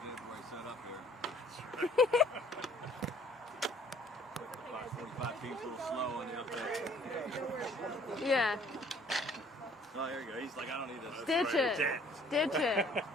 Yeah. Oh, there you go. He's like, I don't need this. Ditch it. Ditch it.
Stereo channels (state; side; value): normal; both; correlation 0.57